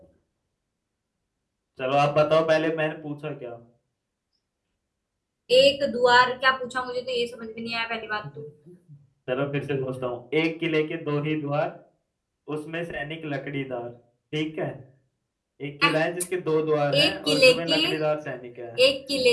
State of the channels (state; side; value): identical; both; correlation 1.00